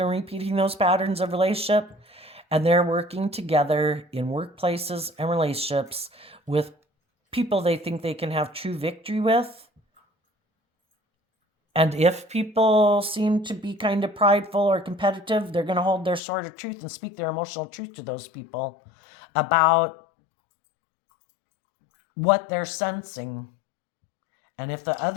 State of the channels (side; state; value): right; drops out; at 16.2 s